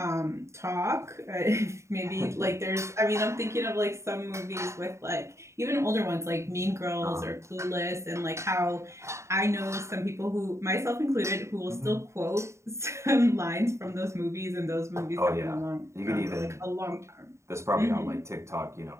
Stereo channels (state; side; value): late; left; 0.14 ms